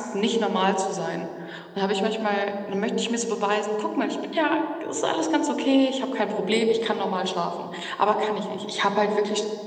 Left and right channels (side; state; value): both; identical; correlation 1.00